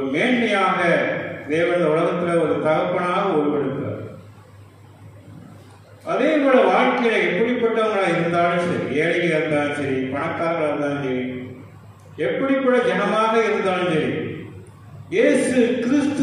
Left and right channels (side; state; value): both; identical; correlation 1.00